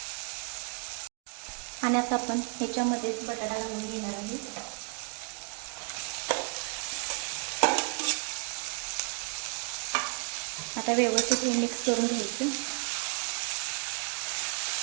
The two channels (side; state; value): left; quieter; 34.2 dB